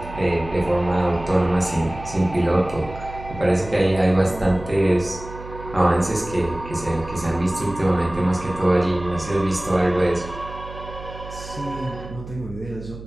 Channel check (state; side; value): noise; right; hum, 13 dB below the sound